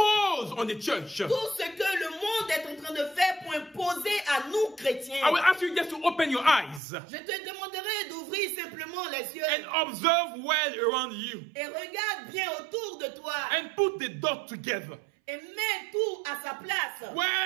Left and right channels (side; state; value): left; drops out; at 6.8 s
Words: on the church. Tout ce que le monde est en train de faire pour imposer à nous chrétiens. I will ask you just to open your eyes. Je te demanderai d'ouvrir simplement les yeux. And observe well around you. Et regarde bien autour de toi. And put the dots together. Et mets tout à sa place.